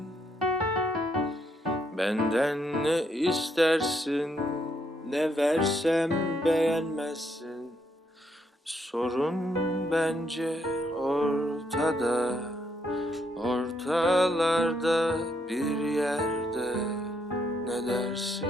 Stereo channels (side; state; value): both; normal; correlation 0.75